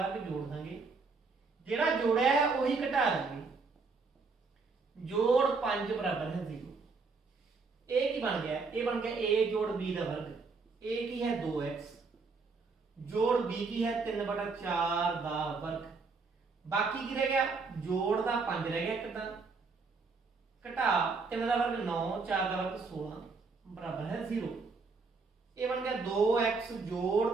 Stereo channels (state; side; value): quieter; left; 4.3 dB